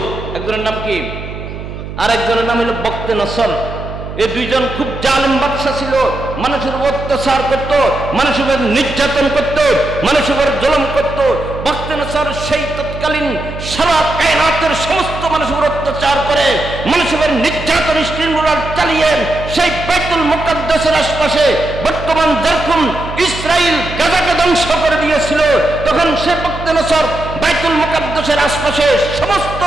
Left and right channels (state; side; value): noise; right; hum, 10 dB below the sound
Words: একজনের নাম কি, আর একজনের নাম হলো বক্তে নসর। এই দুইজন খুব জালিম বাদশা ছিল, মানুষের অত্যাচার করত, মানুষের উপর নির্যাতন করত, মানুষের উপর জুলুম করত। বক্তে নসর সেই তৎকালীন সারা কায়নাতের সমস্ত মানুষের উপর অত্যাচার করে, মানুষের উপর নির্যাতন স্ট্রিমরোলার চালিয়ে সেই বাইতুল মুকাদ্দাসের আশপাশে বর্তমান যেরকম ইসরাইল গাজাকে ধ্বংস করে দিয়েছিল, তখন সে বক্তে নসর বাইতুল মুকাদ্দাসের আশপাশে সমস্ত